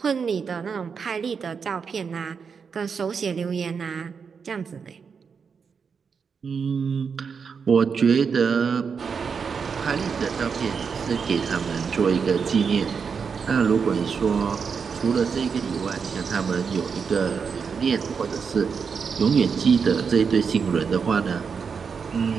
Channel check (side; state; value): left; quieter; 6.0 dB